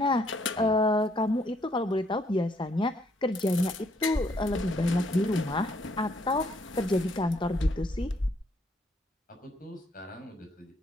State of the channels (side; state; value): both; normal; correlation 0.69